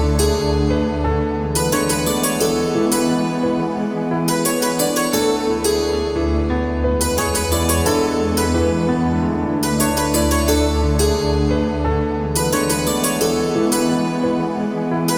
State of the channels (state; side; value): identical; both; correlation 1.00